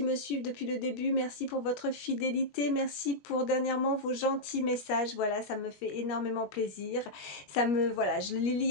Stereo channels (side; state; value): right; late; 21 ms